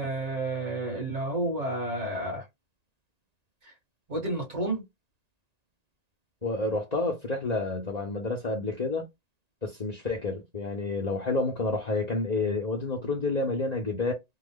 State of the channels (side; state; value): left; late; 1.9 ms